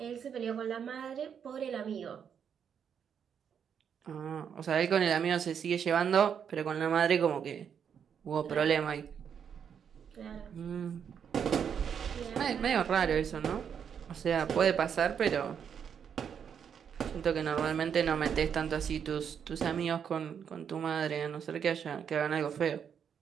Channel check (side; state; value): left; quieter; 7.7 dB